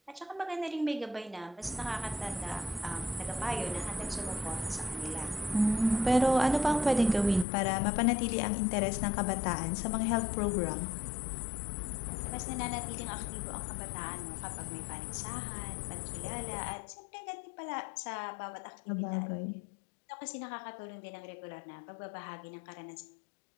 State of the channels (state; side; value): drops out; right; at 7.5 s